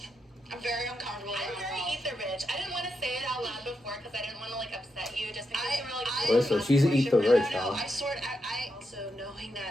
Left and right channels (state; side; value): normal; both; correlation 0.84